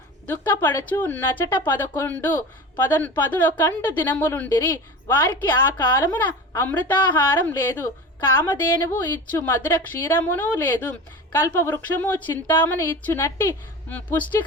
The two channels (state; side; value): normal; both; correlation 0.32